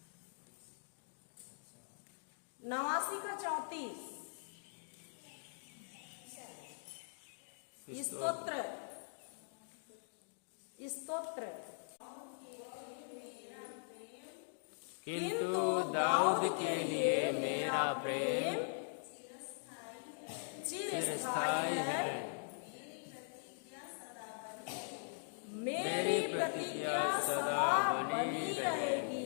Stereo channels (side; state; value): right; silent; digital silence